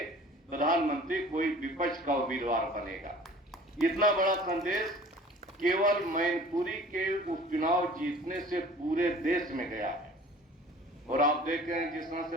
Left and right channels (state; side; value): normal; both; correlation 0.47